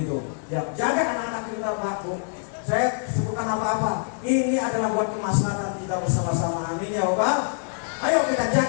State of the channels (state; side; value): silent; right; digital silence